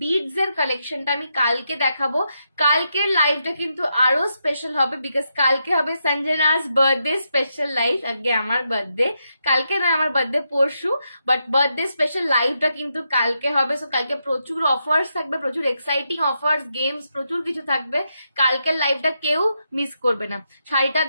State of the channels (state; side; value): inverted; both; correlation -0.83